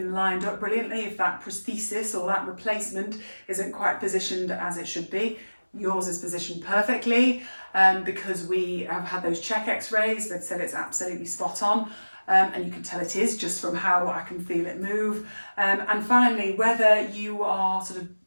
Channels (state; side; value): inverted; both; correlation -1.00